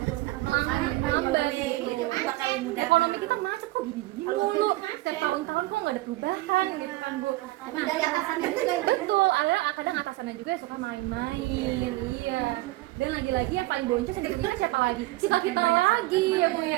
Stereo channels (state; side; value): quieter; left; 19.2 dB